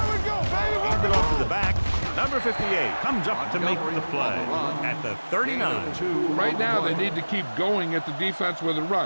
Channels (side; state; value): both; inverted; correlation -1.00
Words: we go, baby. Hand it off to the back. Number 58 comes up to make the play at the 39. Right now, they need to keep going at the defense with a